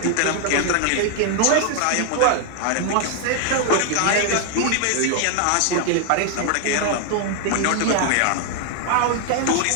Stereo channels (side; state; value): both; different; correlation 0.00